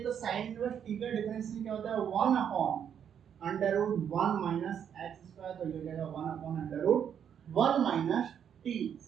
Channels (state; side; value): quieter; left; 8.5 dB